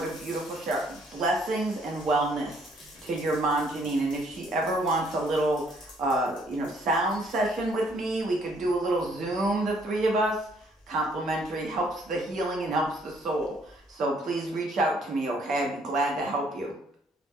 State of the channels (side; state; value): both; normal; correlation 0.65